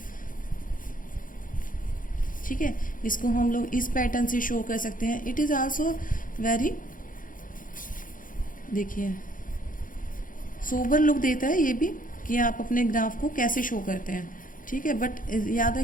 ठीक है, इसको हम लोग इस पैटर्न से शो कर सकते हैं। इट इज़ आल्सो वेरी, देखिए सोबर लुक देता है ये भी कि आप अपने ग्राफ को कैसे शो करते हैं, ठीक है। बट याद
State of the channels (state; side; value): late; right; 0.39 ms